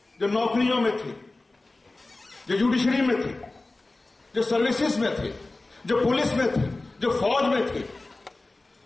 जो नौकरियों में थे, जो जुडिशरी में थे, जो सर्विसेज में थे, जो पुलिस में थे, जो फौज में थे,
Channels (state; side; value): quieter; right; 3.1 dB